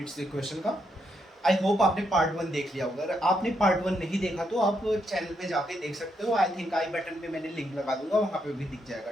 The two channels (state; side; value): normal; both; correlation 0.79